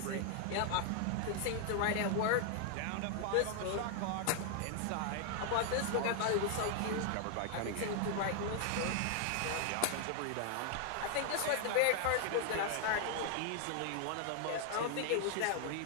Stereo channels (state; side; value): different; both; correlation 0.00